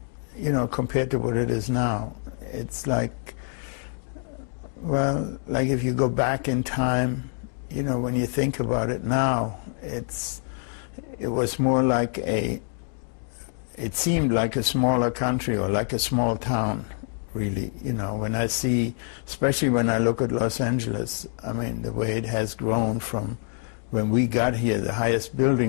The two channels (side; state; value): right; silent; 57 dB below the other